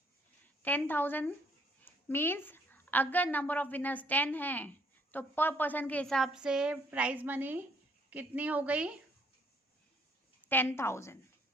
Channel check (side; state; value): both; normal; correlation 0.66